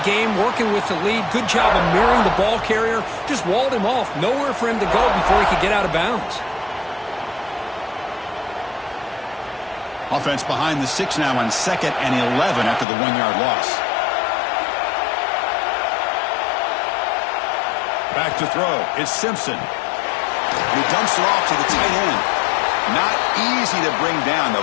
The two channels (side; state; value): right; drops out; at 12.9 s